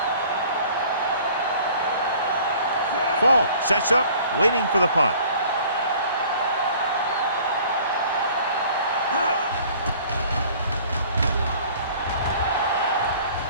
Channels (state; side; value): inverted; both; correlation -0.51